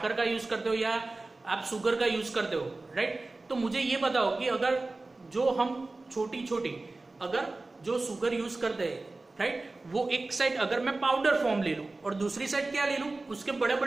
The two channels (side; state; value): left; quieter; 3.2 dB